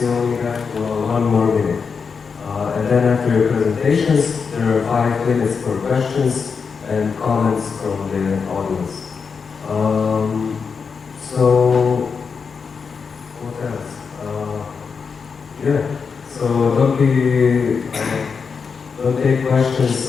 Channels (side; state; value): right; quieter; 5.6 dB